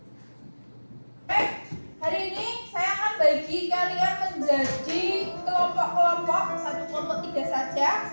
Hari ini saya akan bagi kalian menjadi kelompok-kelompok, satu kelompok 3 saja.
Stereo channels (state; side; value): inverted; both; correlation -1.00